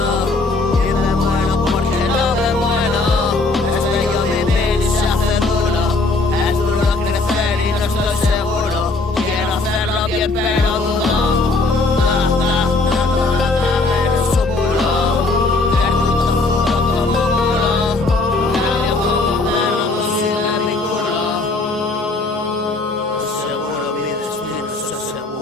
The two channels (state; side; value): quieter; right; 3.4 dB